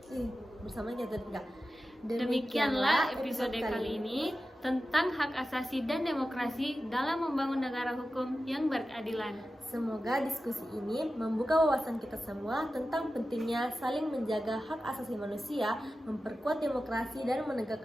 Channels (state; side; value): normal; both; correlation 0.93